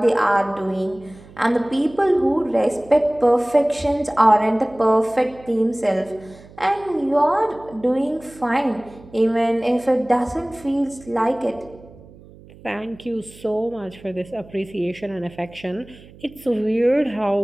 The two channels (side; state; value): right; noise; hum, 22 dB below the sound